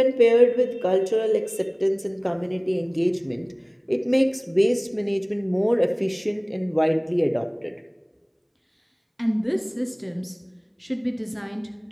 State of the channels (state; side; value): identical; both; correlation 1.00